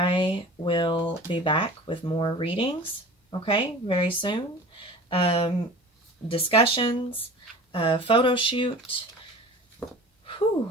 will be back with more readings, okay, very soon. Discussions, photo shoot, whew,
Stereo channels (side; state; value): both; normal; correlation 0.40